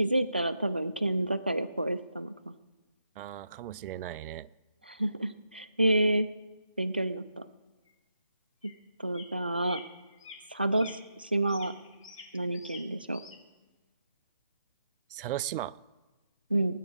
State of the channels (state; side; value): inverted; both; correlation -0.83